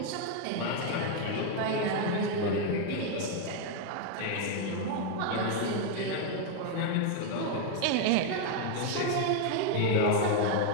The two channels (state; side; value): different; both; correlation 0.01